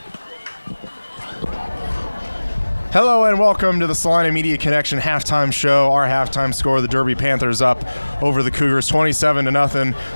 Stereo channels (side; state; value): both; inverted; correlation -1.00